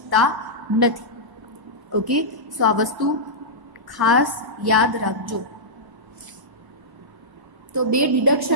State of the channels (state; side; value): late; left; 1.0 ms